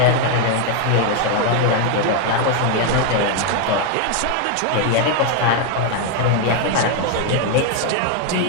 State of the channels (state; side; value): different; both; correlation 0.01